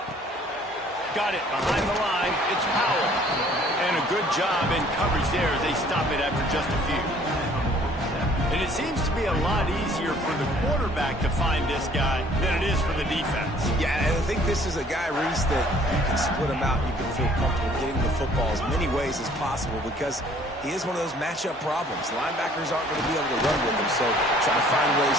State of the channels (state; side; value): normal; both; correlation 0.57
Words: Got it behind the line. It's Powell. And a good job in coverage there as they stop it after just a few. And it seems to be a lot easier for the quarterback to find this guy than it is for the defense. Yeah, and I think this is a guy, Reese, that you can split him out and you can feel comfortable getting the football as many ways as possible because he is one of those matchup problems. Linebackers aren't going to be able to run with him, so try to find ways